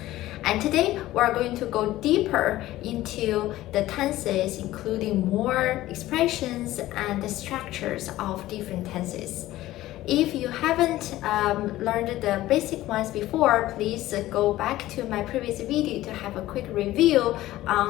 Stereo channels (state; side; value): quieter; right; 15.7 dB